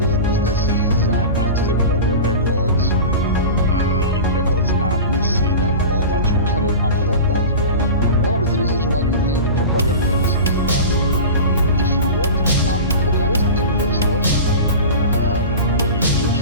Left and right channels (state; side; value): inverted; both; correlation -0.30